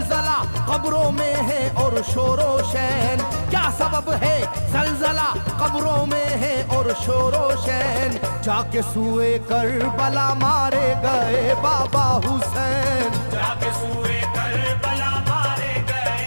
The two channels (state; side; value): inverted; both; correlation -1.00